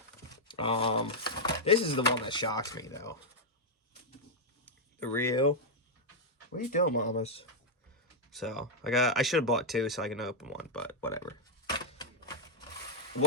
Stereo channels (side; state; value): both; normal; correlation -0.04